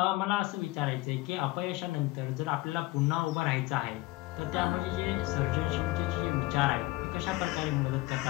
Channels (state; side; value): quieter; right; 19.8 dB